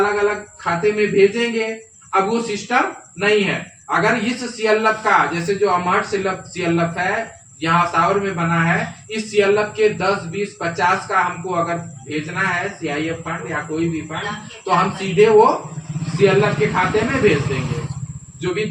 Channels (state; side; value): identical; both; correlation 1.00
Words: अलग खाते में भेजेंगे। अब वो सिस्टम नहीं है। अगर इस सीएलएफ का, जैसे जो अमहट सीएलएफ है यहाँ सावर में बना है, इस सीएलएफ के 10, 20, 50 का हमको अगर भेजना है सीआईएफ फंड या कोई भी फंड, तो हम सीधे वो सीएलएफ के खाते में भेज देंगे। जो भी